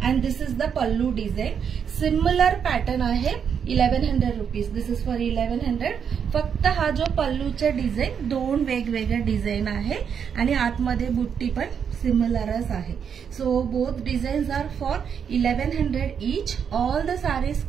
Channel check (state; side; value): quieter; left; 7.4 dB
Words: And this is the pallu design. Similar pattern आहे. 1100 रुपीज. This is for 1100. फक्त हा जो पल्लूचे डिझाईन 2 वेगवेगळे डिझाईन आहे. आणि आतमध्ये बुट्टी पण सिमिलरच आहे. So both designs are for 1100 each. All the saris